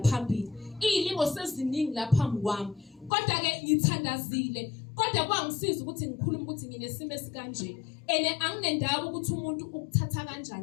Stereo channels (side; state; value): right; drops out; at 3.1 s